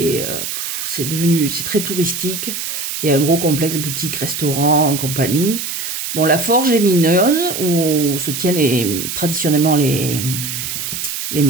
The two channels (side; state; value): right; noise; hiss, 5 dB below the sound